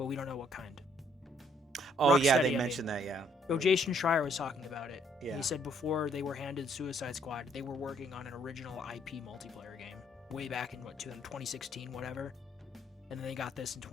we don't know what kind. Oh yeah, Rocksteady, they mentioned that. Yeah. Jason Schreier was talking about it. Yeah. He said before they were handed Suicide Squad, they were working on an original IP multiplayer game way back in 2016, whatever, and then they got this in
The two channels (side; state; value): both; normal; correlation 0.66